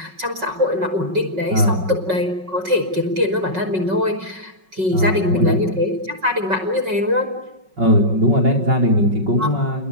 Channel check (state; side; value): late; left; 5.4 ms